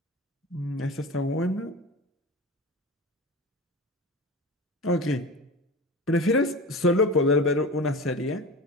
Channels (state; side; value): normal; both; correlation 0.31